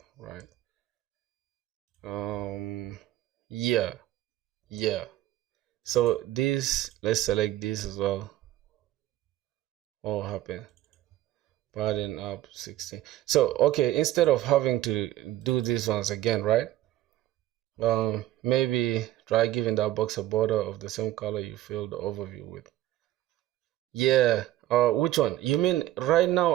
right? Um, yeah, yeah. So this, let's select this as well. What will happen? Padding up 16. So okay, instead of having to do this once again, right? Maybe try giving that box a border of the same color you filled the overview with. Yeah. Which one? You mean right now?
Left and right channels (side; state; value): left; quieter; 14.4 dB